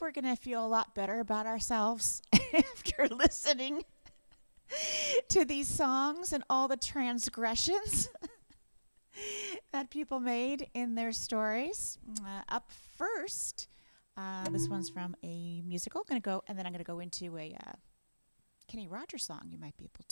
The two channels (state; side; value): inverted; both; correlation -1.00